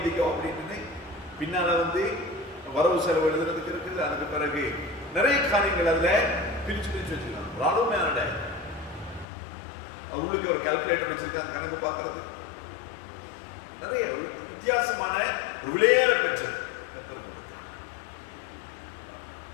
அப்படின்னு. பின்னால் வந்து வரவு செலவு எழுதுறதுக்கு இருக்குது. அதுக்கு பிறகு நிறைய காரியங்கள் அதில் பிரித்து வச்சுருக்காங்க. ஒரு அருமையான டைரி. அது உள்ளுக்கு ஒரு கால்குலேட்டர் வச்சிருக்காங்க, கணக்கு பார்க்கறது. நிறைய வித்தியாசமான ஒரு விலையேற பெற்றது கர்த்தர் கொடுத்தார்.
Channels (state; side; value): drops out; right; at 9.2 s